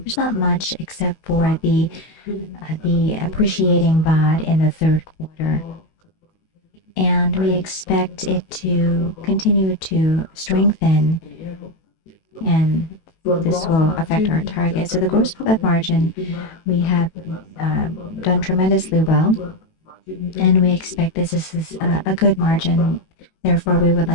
there's not much except for the appreciating baht in the third quarter. And we expect it to continue to strengthen, and this will affect our target. So the gross profit margin, we have done tremendously well, and we expect this is a good margin. Therefore, we would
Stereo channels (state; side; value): late; right; 18 ms